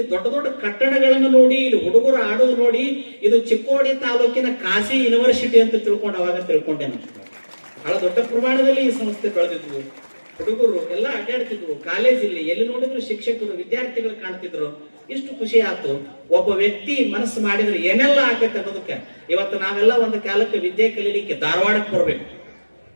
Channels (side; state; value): both; inverted; correlation -1.00